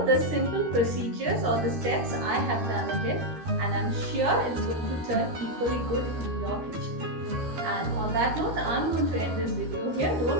the simple procedures or the steps I have done it in, and I'm sure it's going to turn equally good in your kitchen. And on that note, I'm going to end this video here.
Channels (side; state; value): left; late; 13 ms